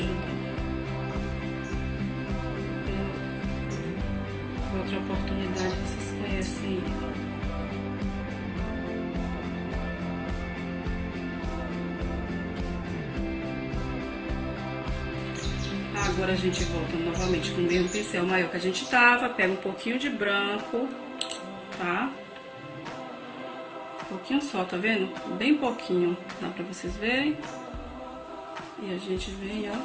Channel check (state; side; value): identical; both; correlation 1.00